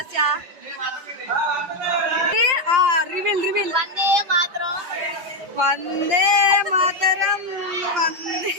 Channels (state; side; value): late; left; 5.7 ms